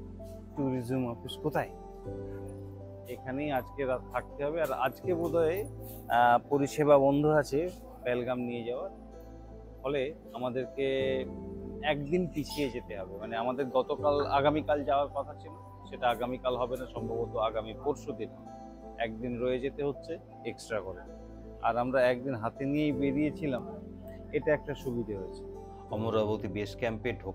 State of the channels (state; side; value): identical; both; correlation 1.00